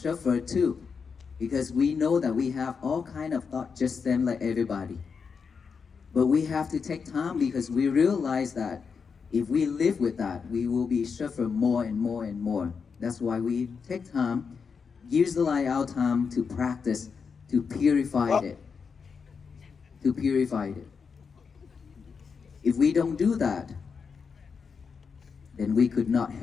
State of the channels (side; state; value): right; quieter; 5.7 dB